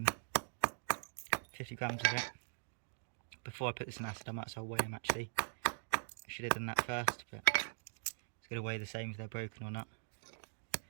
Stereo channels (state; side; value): silent; left; digital silence